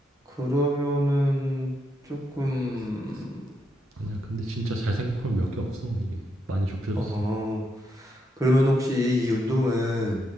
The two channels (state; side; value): normal; both; correlation 0.81